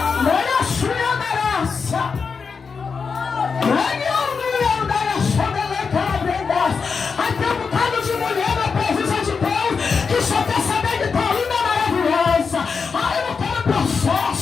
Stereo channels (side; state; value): right; quieter; 5.4 dB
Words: Olha a sua graça. Aí tem um bocado de mulher na presença de Deus que só quer saber de tua linda maravilhosa. Ah, eu não quero